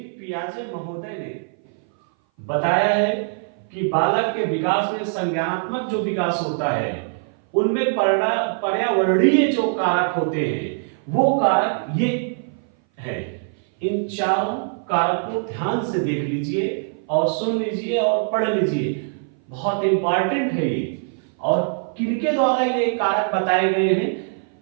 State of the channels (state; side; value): silent; left; 58 dB below the other